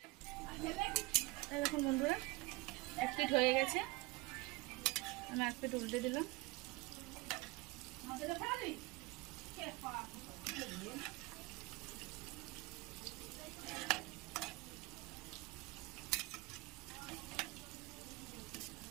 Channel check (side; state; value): left; quieter; 23.1 dB